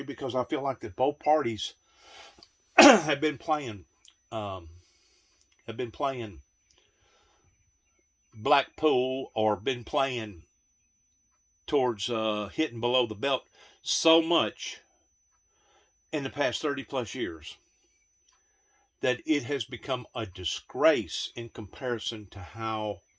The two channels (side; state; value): both; identical; correlation 1.00